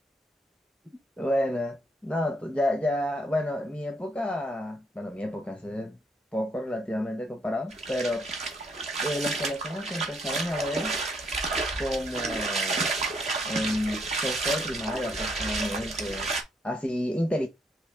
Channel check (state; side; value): normal; both; correlation 0.72